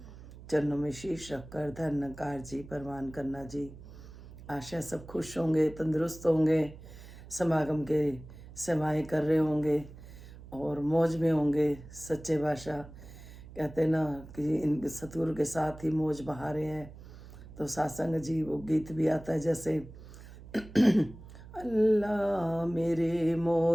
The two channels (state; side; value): noise; right; hum, 17 dB below the sound